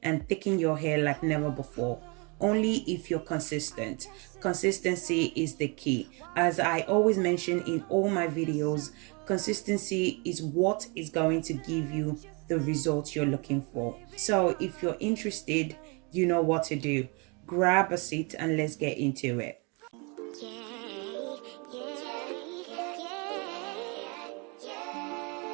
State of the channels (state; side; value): quieter; left; 31.4 dB